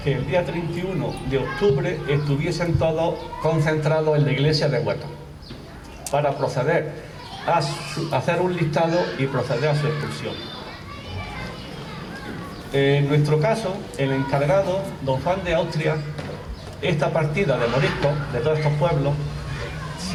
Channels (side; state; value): both; identical; correlation 1.00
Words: que el día 31 de octubre estuviesen todos concentrados en la iglesia de Huetor para proceder a hacer un listado y proceder a su expulsión. En nuestro caso, el encargado, don Juan de Austria, esta partida de moriscos de todos estos pueblos,